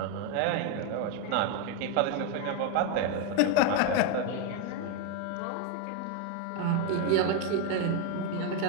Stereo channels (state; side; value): different; both; correlation 0.02